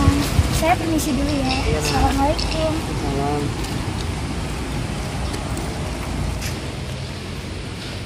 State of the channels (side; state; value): both; identical; correlation 1.00